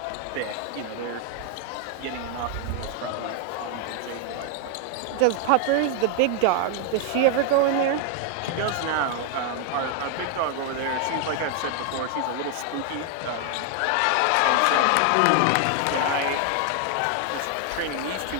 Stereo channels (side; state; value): both; different; correlation 0.00